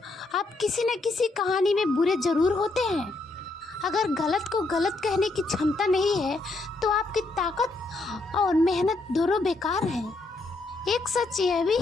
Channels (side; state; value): right; quieter; 3.1 dB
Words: आप किसी न किसी कहानी में बुरे जरूर होते हैं। अगर गलत को गलत कहने की क्षमता नहीं है तो आपकी ताकत और मेहनत दोनों बेकार है। एक सच यह भी